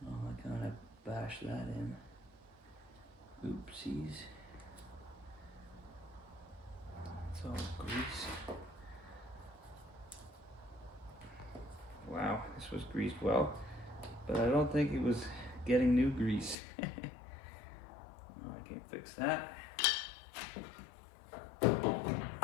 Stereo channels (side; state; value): right; drops out; at 16.6 s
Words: oh, I kind of bashed that in. Oopsies. It's all grease. Wow, this was greased well, but I don't think it was getting new grease. Oh, I can't fix that. It's